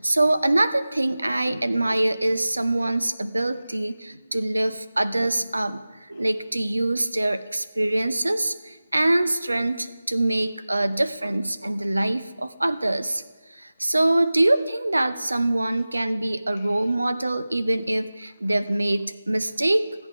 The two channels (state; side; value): inverted; both; correlation -0.97